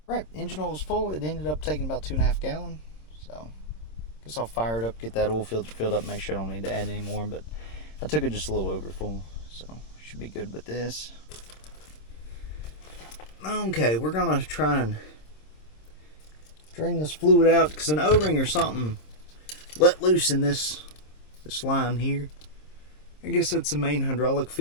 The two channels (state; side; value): late; right; 26 ms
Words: Right, engine oil was full. It ended up taking about 2.5 gallons. So, guess I'll fire it up, get that oil filter filled up, make sure I don't need to add any more. But I took it just a little over full, so should be good with this. Okay, we're gonna try and drain this fluid out because an O-ring or something let loose in this line here. I guess that's the main hydraulic